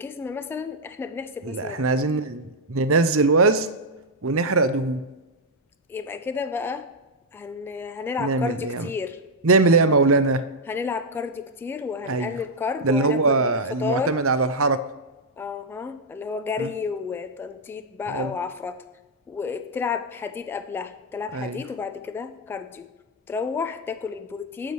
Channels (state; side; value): normal; both; correlation -0.03